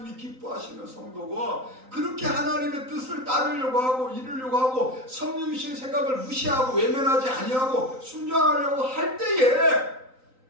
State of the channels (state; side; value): late; left; 3.9 ms